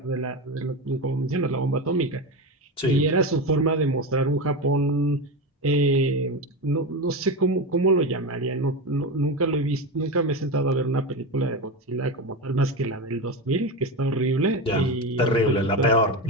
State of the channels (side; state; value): both; normal; correlation 0.19